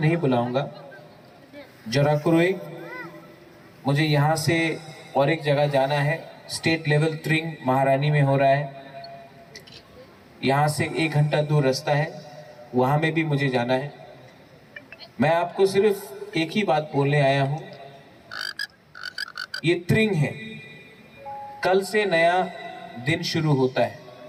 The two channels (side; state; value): both; identical; correlation 1.00